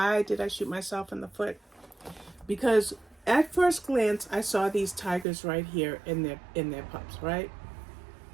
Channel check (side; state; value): left; drops out; at 5.2 s